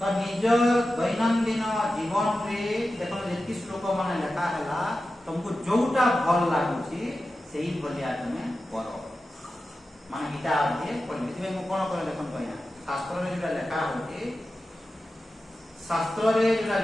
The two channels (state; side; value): normal; both; correlation 0.93